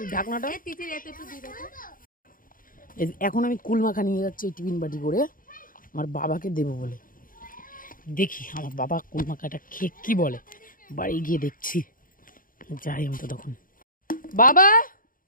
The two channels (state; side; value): late; right; 0.40 ms